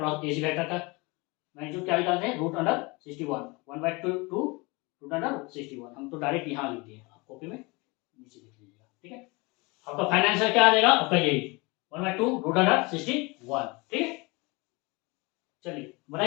A C vector का मैग्नीट्यूड क्या निकालते हैं, √61। 1/2 रूट अंडर 61। हम तो डायरेक्ट यहाँ लिख दिए, आप कॉपी में नीचे लिख लीजिएगा। ठीक है, आपका फाइनल आंसर क्या आ जाएगा, आपका यही 1/2 रूट अंडर 61। ठीक है, चलिए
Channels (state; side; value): quieter; right; 26.2 dB